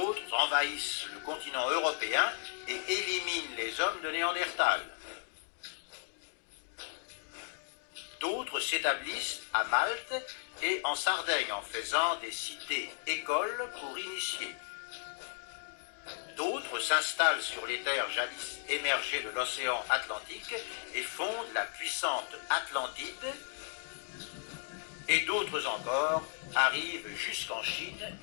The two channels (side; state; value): right; silent; 54 dB below the other